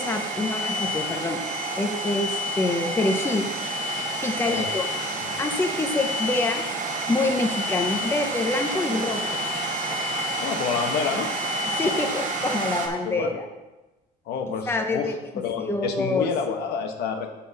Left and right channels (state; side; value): normal; both; correlation 0.45